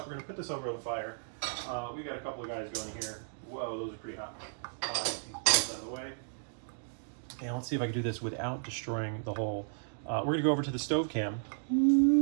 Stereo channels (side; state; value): left; silent; digital silence